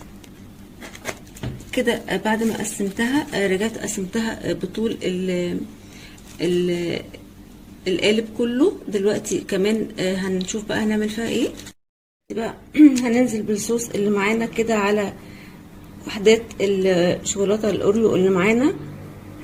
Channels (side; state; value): both; identical; correlation 1.00